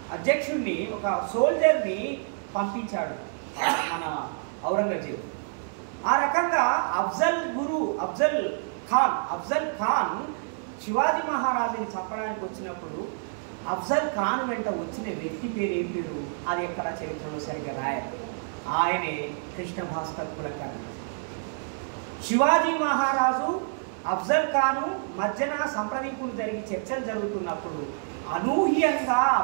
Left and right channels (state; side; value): silent; left; 60 dB below the other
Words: అధ్యక్షుడిని, ఒక సోల్జర్ని పంపించాడు మన ఔరంగజేబు. ఆ రకంగా అఫ్జల్ ఖాన్ శివాజీ మహారాజుని చంపడానికి వచ్చినప్పుడు అఫ్జల్ ఖాన్ వెంట వచ్చిన వ్యక్తి పేరు ఏం పేరు అది ఎక్కడ చరిత్రలో సరిగ్గా రాయాలి. ఆయనే కృష్ణ భాస్కర్ కులకర్ణి. శివాజీ మహారాజు అఫ్జల్ ఖాను మధ్యన సంప్రదింపులు జరిగి చర్చలు జరుగుతున్నప్పుడు అనూహ్యంగా